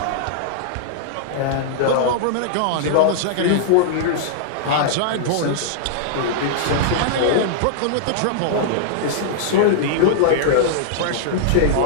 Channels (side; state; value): both; different; correlation -0.01